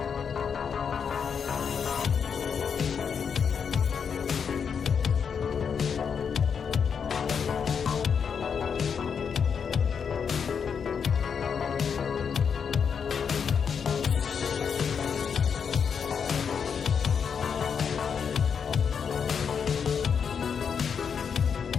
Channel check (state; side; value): quieter; right; 6.7 dB